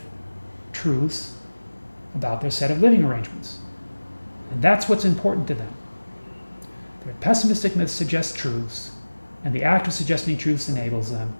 truths about their set of living arrangements. And that's what's important to them. Their pessimistic myths suggest truths, and the act of suggesting truths enables them.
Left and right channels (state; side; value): inverted; both; correlation -1.00